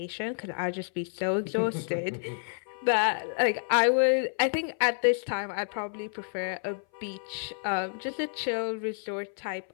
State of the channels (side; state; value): right; silent; 56 dB below the other